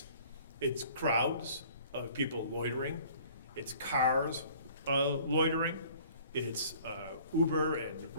It's crowds of people loitering. It's cars loitering. It's Uber and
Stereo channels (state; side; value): inverted; both; correlation -0.52